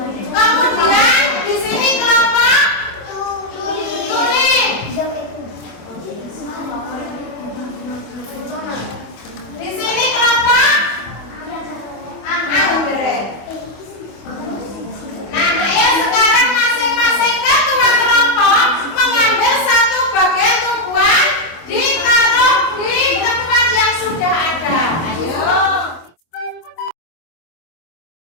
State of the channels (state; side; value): late; right; 25 ms